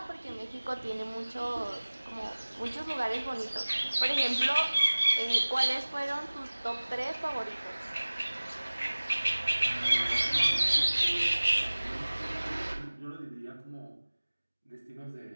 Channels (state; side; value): inverted; both; correlation -1.00